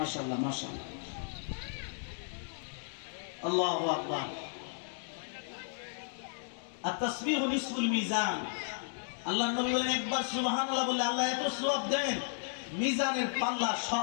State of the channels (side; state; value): right; silent; digital silence